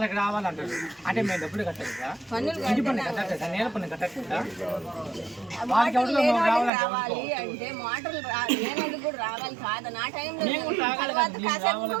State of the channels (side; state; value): left; drops out; at 6.7 s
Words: రావాలంటారు అంటే మేము డబ్బులు కట్టలేదా పన్నులు ఇంటి పన్ను కట్టలేదా నేల పన్ను కట్టలేదా వాళ్ళకి మోటార్లు ఎవరిలో లేని వాళ్ళకి రావాలంటే రావాలి అంటే మోటార్లు లేనందుకు కూడా రావాలి కాదు నా టైంలో మేము కూడా రావాలి తర్వాత కదా, మేము కాసేపు రావాలి